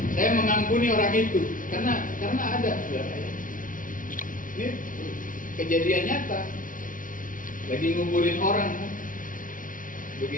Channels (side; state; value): right; late; 0.39 ms